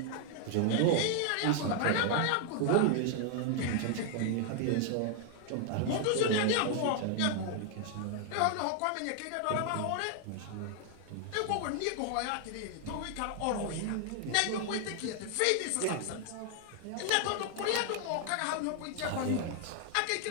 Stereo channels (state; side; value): different; both; correlation 0.00